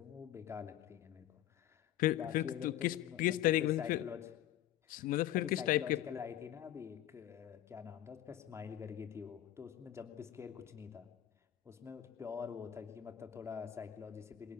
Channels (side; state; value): right; quieter; 12.4 dB